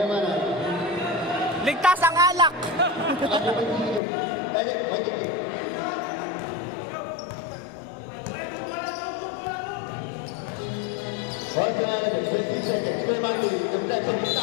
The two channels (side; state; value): right; drops out; at 4.0 s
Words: Ligtas ang alak. Ako ba dito? Wait. Once again, 20 seconds. Kuya Martin, nagtagsa